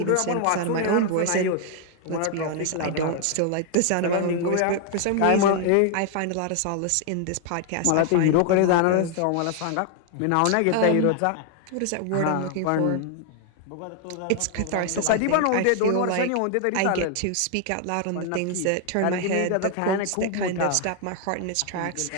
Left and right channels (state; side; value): different; both; correlation 0.00